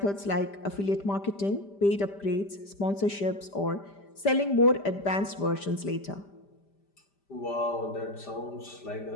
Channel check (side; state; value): right; late; 5.0 ms